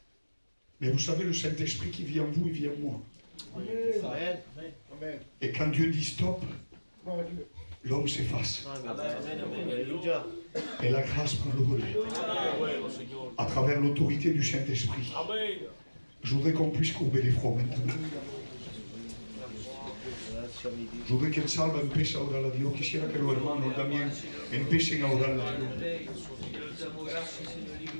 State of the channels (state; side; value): inverted; both; correlation -1.00